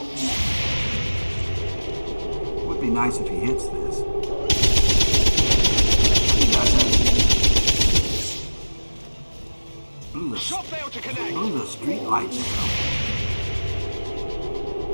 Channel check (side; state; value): both; inverted; correlation -1.00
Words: Would be nice if he hits this. He doesn't. Blew the street lights out.